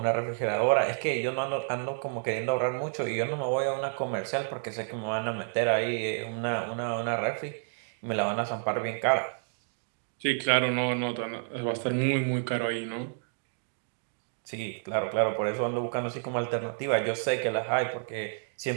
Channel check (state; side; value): silent; left; digital silence